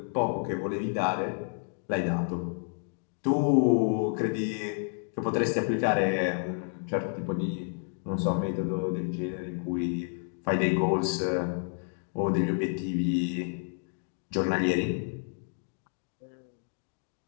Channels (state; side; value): silent; right; 56 dB below the other